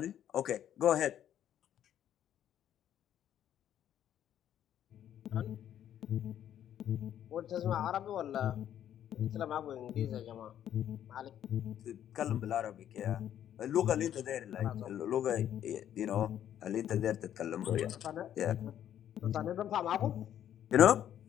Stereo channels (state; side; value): quieter; right; 10.6 dB